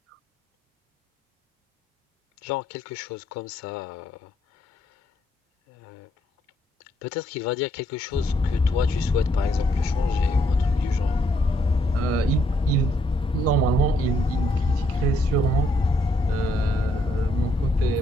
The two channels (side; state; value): both; normal; correlation 0.73